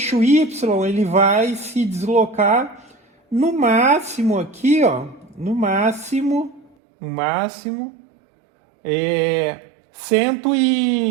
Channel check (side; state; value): left; drops out; at 6.8 s